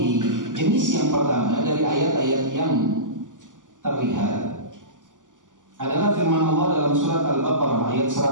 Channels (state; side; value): late; left; 0.88 ms